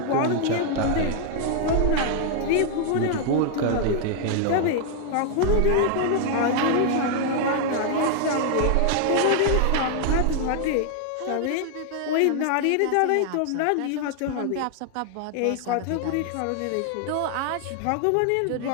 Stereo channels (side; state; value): both; different; correlation 0.00